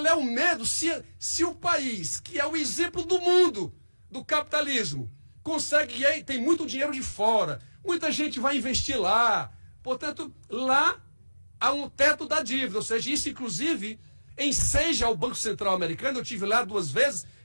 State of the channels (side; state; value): both; inverted; correlation -1.00